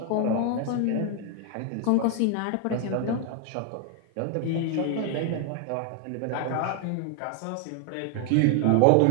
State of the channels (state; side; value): different; both; correlation 0.00